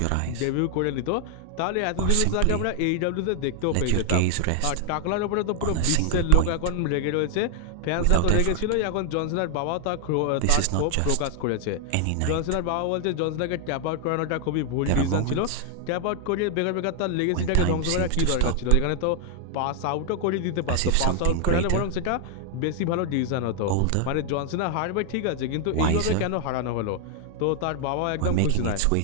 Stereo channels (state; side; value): different; both; correlation 0.00